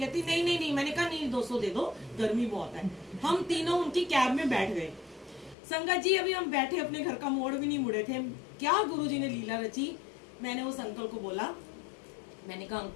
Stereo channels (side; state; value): right; drops out; at 5.6 s